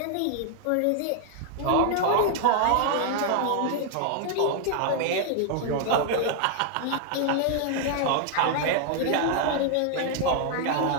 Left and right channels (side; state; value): both; different; correlation 0.00